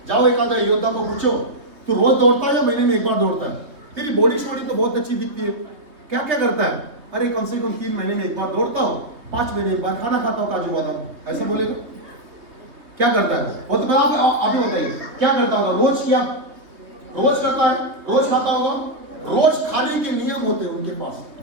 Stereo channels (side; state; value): left; late; 3.2 ms